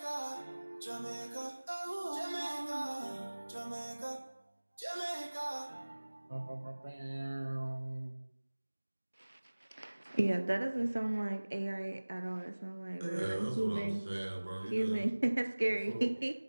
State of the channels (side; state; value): both; inverted; correlation -1.00